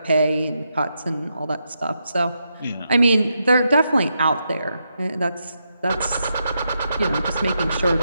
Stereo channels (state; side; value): inverted; both; correlation -0.83